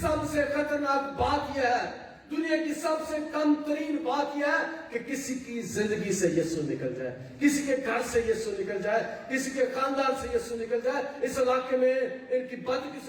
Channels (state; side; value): identical; both; correlation 1.00